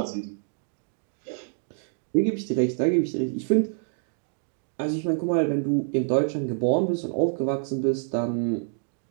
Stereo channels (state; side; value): silent; left; digital silence